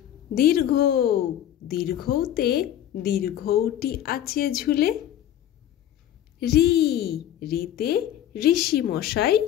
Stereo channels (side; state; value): right; quieter; 11.3 dB